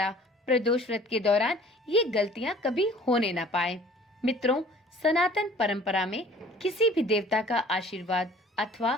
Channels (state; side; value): normal; both; correlation 0.50